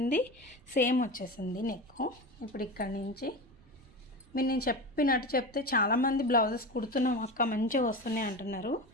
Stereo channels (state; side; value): noise; right; rumble, 26 dB below the sound